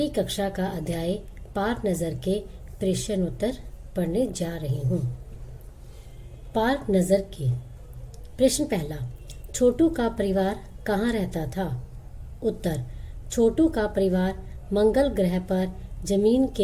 कक्षा का अध्याय पार नज़र के प्रश्न उत्तर पढ़ने जा रही हूँ। पार नज़र के प्रश्न पहला, छोटू का परिवार कहाँ रहता था? उत्तर, छोटू का परिवार मंगल ग्रह पर जमीन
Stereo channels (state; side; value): identical; both; correlation 1.00